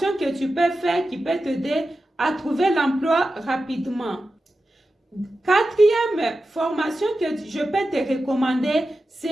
que tu peux faire qui peut t'aider à trouver l'emploi rapidement. 4e formation que je peux te recommander,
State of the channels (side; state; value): both; normal; correlation 0.92